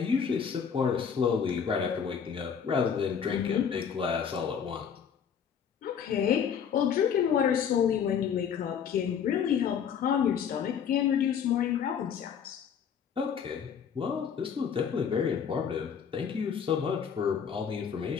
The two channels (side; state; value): right; quieter; 7.5 dB